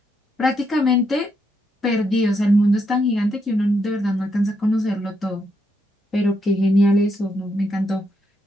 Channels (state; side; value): normal; both; correlation 0.79